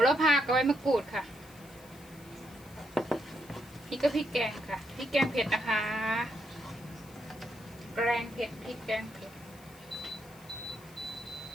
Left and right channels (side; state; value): left; noise; hiss, 23 dB below the sound